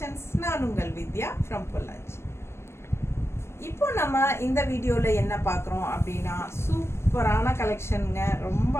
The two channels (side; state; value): right; late; 0.12 ms